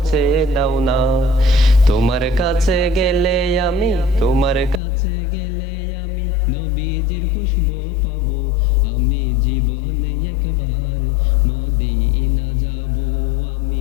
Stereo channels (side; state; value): right; drops out; at 4.8 s